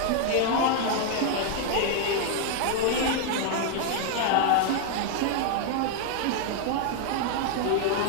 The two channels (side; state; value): both; different; correlation 0.00